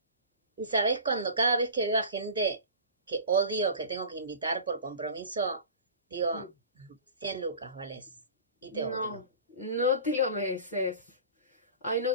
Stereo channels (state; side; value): inverted; both; correlation -0.38